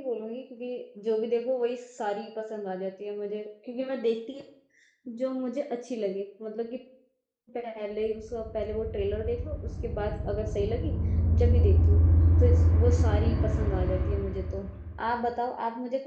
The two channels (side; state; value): both; identical; correlation 1.00